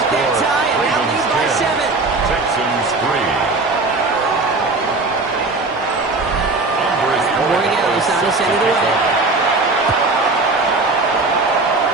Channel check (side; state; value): left; quieter; 3.4 dB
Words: that tie and now lead by 7. Texans 3. Borges on his end of the way.